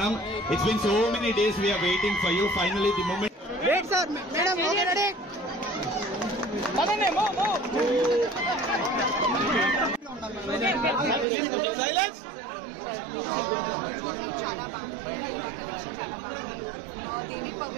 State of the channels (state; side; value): drops out; left; at 11.2 s